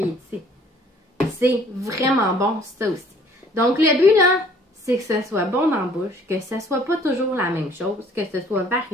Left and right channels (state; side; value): normal; both; correlation 0.57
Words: est ici. C'est vraiment bon, ça aussi. Donc, le but, là, c'est que ce soit bon dans la bouche, que ce soit pas toujours la même chose, que ce soit